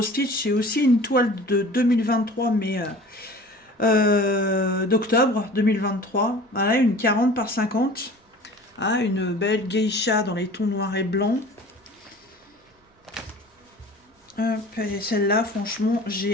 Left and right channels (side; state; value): both; normal; correlation 0.43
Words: Stitch, c'est aussi une toile de 2023, mais d'octobre 2023. Voilà, une 40 par 50. Ah, une belle geisha dans les tons noirs et blancs. Celle-là, franchement,